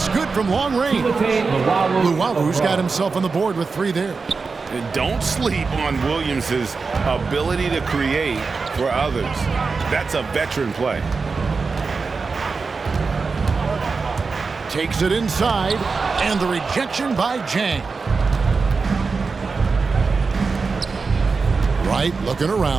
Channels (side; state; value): left; quieter; 4.6 dB